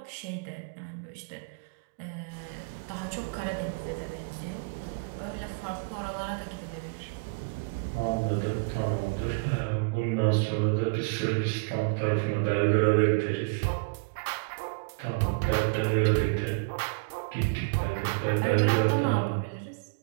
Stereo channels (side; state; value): left; quieter; 32.2 dB